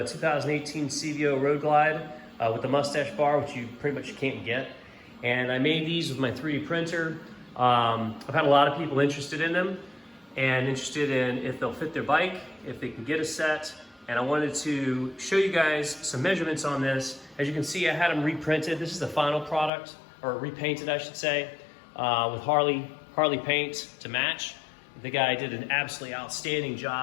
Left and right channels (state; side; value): drops out; right; at 19.7 s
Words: 2018 CVO Road Glide with the Mustache bar, which you pretty much can't get. And I made these with my 3D printer. I've had a lot of people interested in them and interested in if they'll fit their bike, if they can get a set. And I wanted to show you guys some measurements on this. As you can see, I had them reprinted. This is the final product, or repainted I should say, with Harley paint to match. The guy did an absolutely outstanding